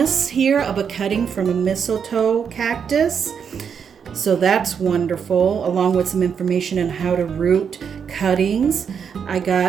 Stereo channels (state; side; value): quieter; left; 7.0 dB